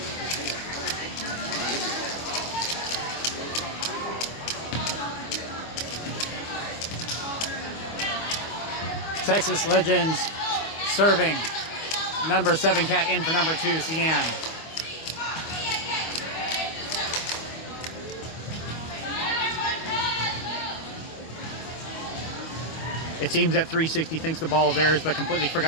Texas Legends serving. Number 7 Cat in for number 2, Cian. It seems that 360 thinks the ball is theirs, but completely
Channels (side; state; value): right; late; 25 ms